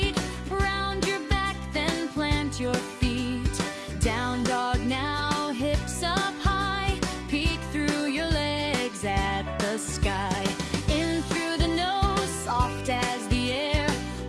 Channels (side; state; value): both; identical; correlation 1.00